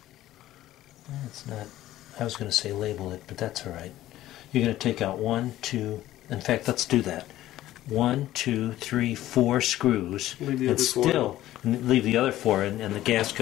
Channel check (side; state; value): right; quieter; 14.4 dB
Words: it's not, I was going to say label it, but that's all right. You're going to take out 1, 2, in fact, let's do that. 1, 2, 3, 4 screws, Leave the and other four. still leave the other 4, and the